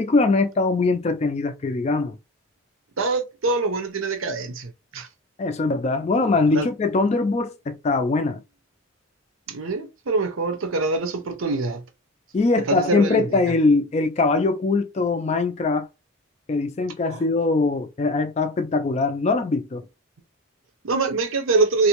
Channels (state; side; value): normal; both; correlation 0.28